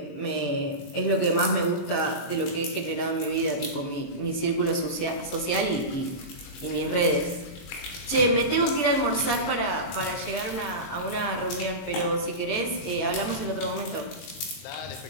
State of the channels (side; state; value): right; late; 23 ms